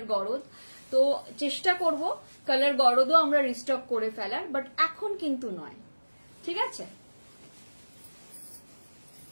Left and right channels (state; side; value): inverted; both; correlation -1.00